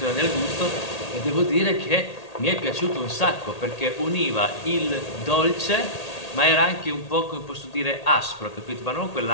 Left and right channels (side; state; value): right; late; 1.8 ms